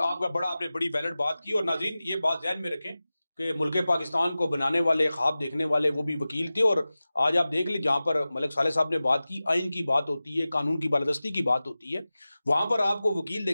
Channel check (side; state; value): both; inverted; correlation -0.96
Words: आपने बड़ी वैलिड बात की। और नाज़रीन ये बात ध्यान में रखें कि मुल्क पाकिस्तान को बनाने वाले, ख्वाब देखने वाले वो भी वकील थे। और आज आप देख लें जहाँ पर मलिक साले साहब ने बात की, आइन की बात होती है, कानून की बालादस्ती की बात होती है, वहाँ पर आपको वकील